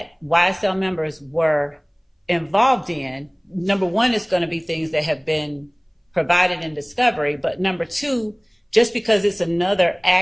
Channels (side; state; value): both; identical; correlation 1.00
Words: YSL members were involved in, number one, it's going to be things that have been provided in discovery. But number two, just because it's another